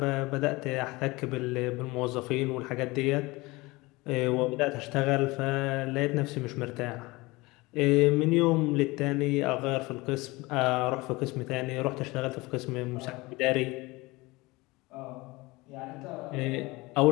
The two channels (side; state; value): right; quieter; 22.5 dB